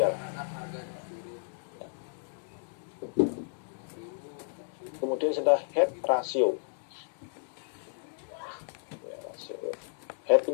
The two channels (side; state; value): right; silent; digital silence